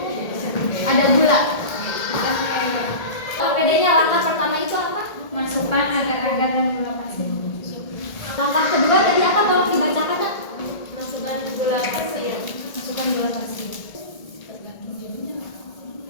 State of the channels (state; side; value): late; right; 1.8 ms